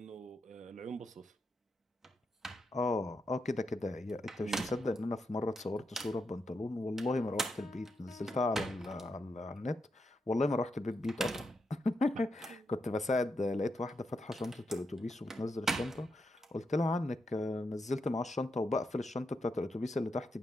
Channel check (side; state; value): both; normal; correlation 0.84